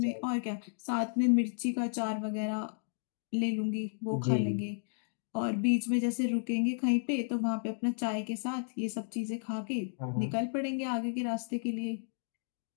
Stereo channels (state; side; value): silent; right; digital silence